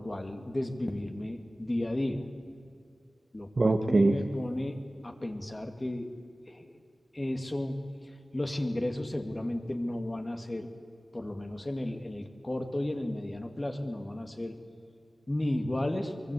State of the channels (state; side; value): normal; both; correlation 0.97